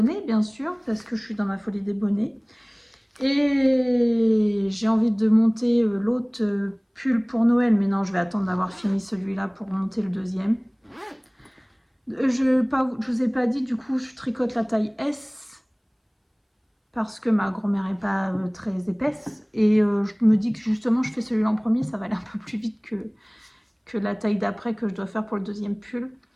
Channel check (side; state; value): both; identical; correlation 1.00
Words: bien sûr, parce que je suis dans ma folie des bonnets. Et j'ai envie de monter l'autre pull pour Noël, mais non, je vais attendre d'avoir fini celui-là pour monter le deuxième. Je vous ai pas dit, du coup, je tricote la taille S parce que ma grand-mère est pas très épaisse. Et je me dis que justement, je fais celui-là en premier, ça va aller un peu plus vite que la taille d'après que je dois faire pour le deuxième pull.